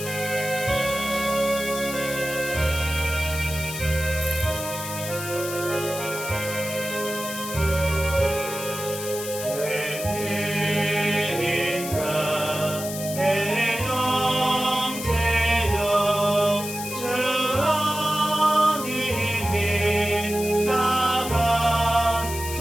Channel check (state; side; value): noise; left; hiss, 8 dB below the sound